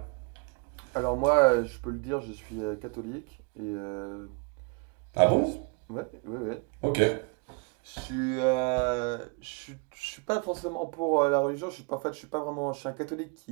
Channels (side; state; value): left; quieter; 34.2 dB